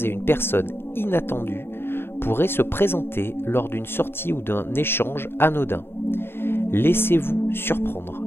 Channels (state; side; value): late; right; 0.11 ms